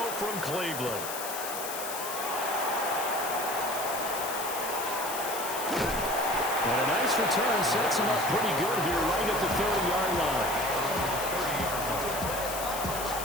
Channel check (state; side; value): noise; left; hiss, 6 dB below the sound